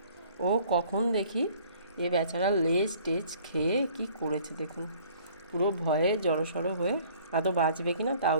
ও কখন দেখি এ বেচারা লেজ টেজ খেয়ে কি করেছে দেখুন। পুরো ভয়ে জড়সড় হয়ে, আদৌ বাঁচবে কিনা তাও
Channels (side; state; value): both; inverted; correlation -0.55